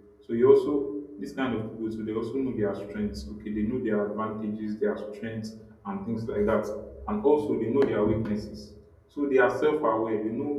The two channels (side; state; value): both; identical; correlation 1.00